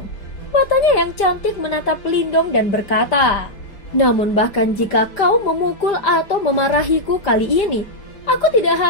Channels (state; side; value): late; right; 5.0 ms